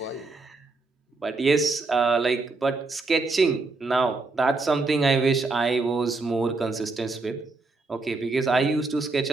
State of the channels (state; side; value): quieter; left; 3.6 dB